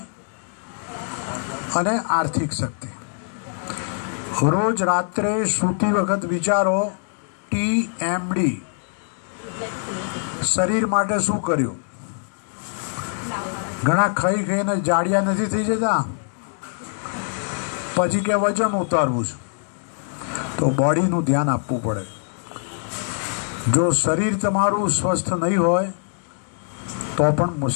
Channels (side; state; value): right; silent; 63 dB below the other